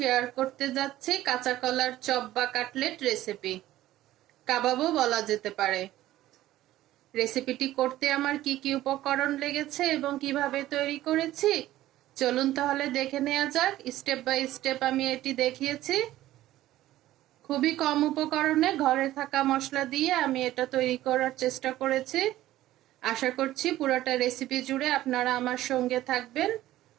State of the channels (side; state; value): left; quieter; 14.8 dB